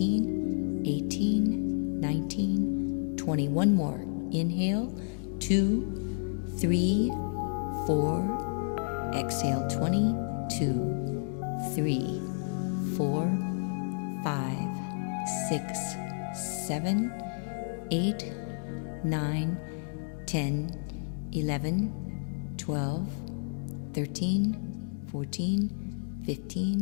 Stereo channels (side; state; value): right; silent; digital silence